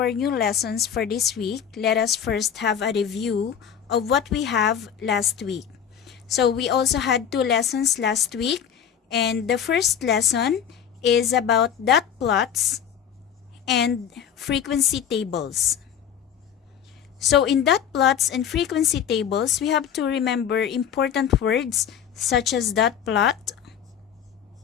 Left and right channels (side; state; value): right; quieter; 8.5 dB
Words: new lessons for this week, let us first have a review of what we have last week. So we also had 2 lessons last week, and the first lesson is about dot plots and frequency tables. So in dot plots and frequency tables, we have to remember important words such as dot plot,